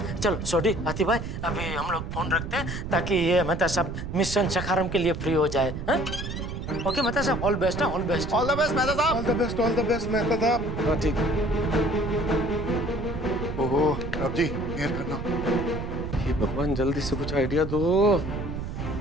चलो छोटी आतिफ भाई, अभी हम लोग फोन रखते हैं ताकि ये मेहता साहब मिशन सखारम के लिए फ्री हो जाए। हाँ? Okay Mehta sahab, all best है, all best. All the best Mehta sahab. All the best, all the best Mehta sahab. हाँ ठीक। ओहो रब जी मेहर करना। ये भगवान जल्दी से कुछ आइडिया दो।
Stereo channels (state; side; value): noise; right; rumble, 6 dB below the sound